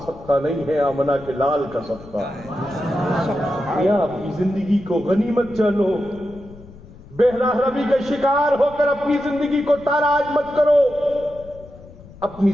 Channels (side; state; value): left; noise; rumble, 20 dB below the sound